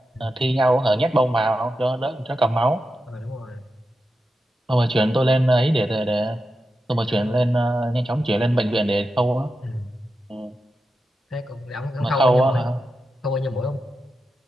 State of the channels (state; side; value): normal; both; correlation 0.89